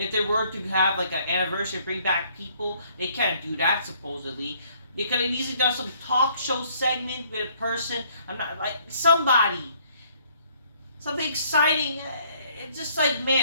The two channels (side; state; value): both; inverted; correlation -0.63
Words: they were to have an anniversary, bring back people, they can't do that supposedly. They could have easily done some talk show segment with a person. I'm not somebody, something exciting. It's just